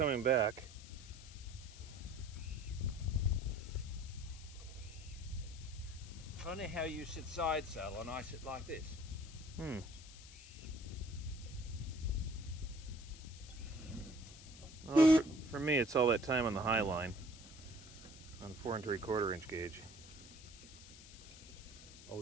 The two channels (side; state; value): left; noise; hiss, 17 dB below the sound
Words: back. Funny how you sit side saddle and I sit like this. Well, for me, it's all that time on the high line on 4 3/4 inch gauge.